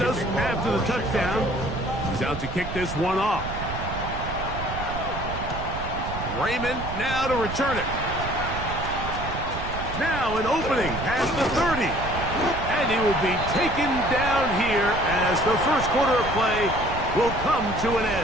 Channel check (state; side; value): noise; right; rumble, 7 dB below the sound